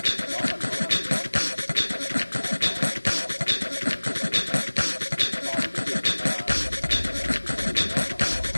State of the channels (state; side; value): inverted; both; correlation -1.00